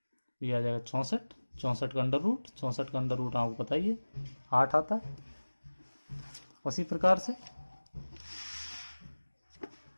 ये आ जाएगा 64, 64 का अंडर रूट, 64 का अंडर रूट आपको पता ही है 8 आता है। उसी प्रकार से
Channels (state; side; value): inverted; both; correlation -1.00